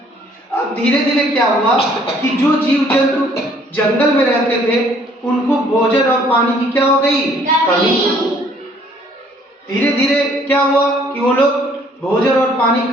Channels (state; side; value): normal; both; correlation 0.61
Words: अब धीरे धीरे क्या हुआ कि जो जीव जंतु जंगल में रहते थे उनको भोजन और पानी की क्या हो गई, कमी। धीरे धीरे क्या हुआ कि वो लोग भोजन और पानी की